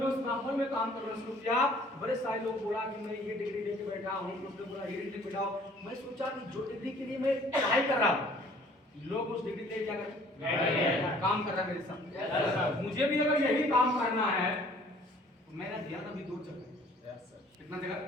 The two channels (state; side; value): normal; both; correlation 0.55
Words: उस माहौल में काम करना शुरू किया, बड़े सारे लोग बोला कि मैं ये डिग्री लेके बैठा हूँ, बोला ये डिग्री बैठा हूँ। मैं सोचा कि जो डिग्री के लिए मैं पढ़ाई कर रहा हूँ लोग उस डिग्री ले जाकर काम कर रहा है मेरे साथ। मुझे भी अगर यही काम करना है तो मैंने दिया था अभी 2 जगह। कितना जगह?